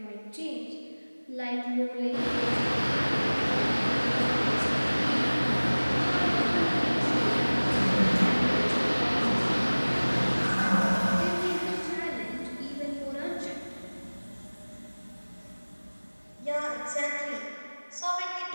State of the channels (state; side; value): inverted; both; correlation -1.00